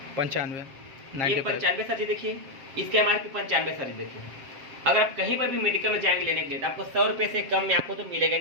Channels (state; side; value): late; left; 7.5 ms